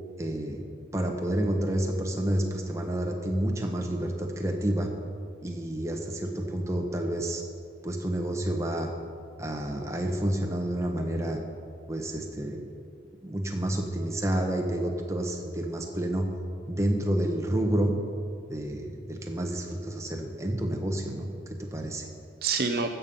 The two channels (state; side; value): normal; both; correlation 0.82